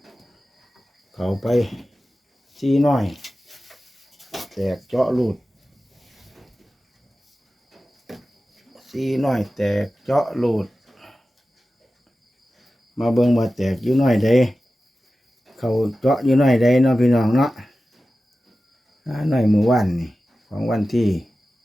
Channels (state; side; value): normal; both; correlation 0.95